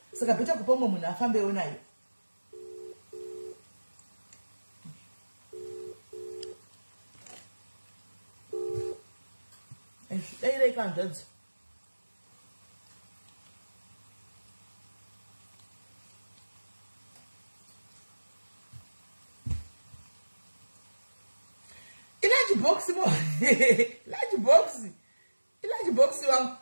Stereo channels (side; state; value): both; inverted; correlation -1.00